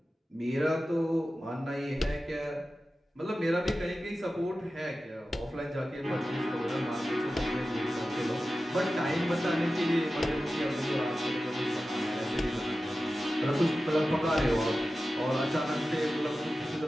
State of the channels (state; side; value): normal; both; correlation 0.94